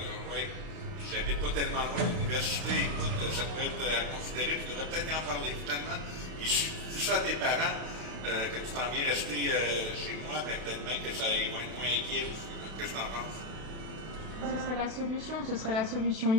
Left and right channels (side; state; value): left; late; 32 ms